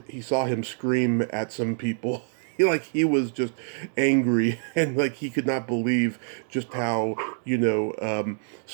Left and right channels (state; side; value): silent; left; digital silence